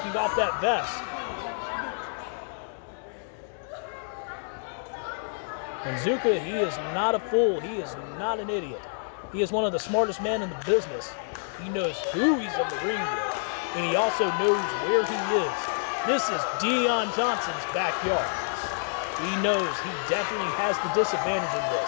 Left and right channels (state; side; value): silent; right; digital silence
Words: off that vest. And Zuka, he is not a fool. He is not an idiot. He is one of the smartest men in the business. He knows who he's in the ring with, and he also knows where he is. This is Deon Johnson's backyard. He knows he definitely has the disadvantage in